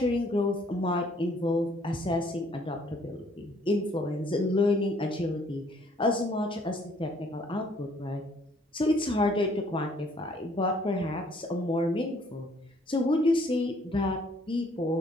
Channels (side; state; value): both; normal; correlation 0.62